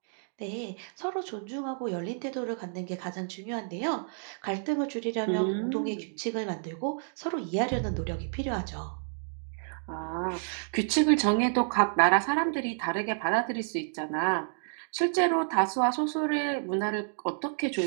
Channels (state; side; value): silent; left; digital silence